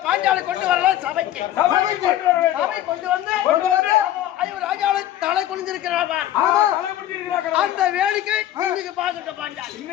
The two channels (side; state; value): right; quieter; 12.9 dB